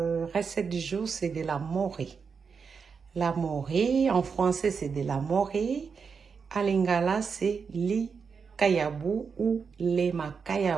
recette du jour, c'est de la morée. La morée, en français, c'est de la morée. En lingala, c'est li kayabu ou le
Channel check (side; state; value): left; quieter; 5.8 dB